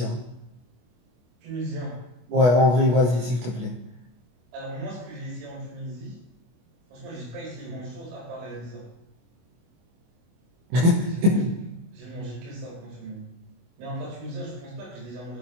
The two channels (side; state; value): left; late; 24 ms